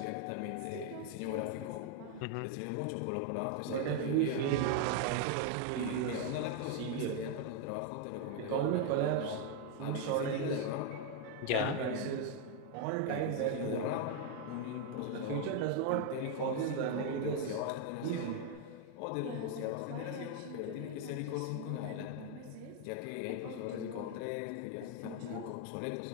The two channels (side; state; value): both; different; correlation 0.00